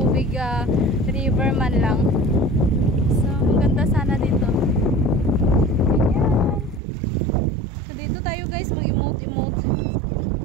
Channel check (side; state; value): left; drops out; at 6.8 s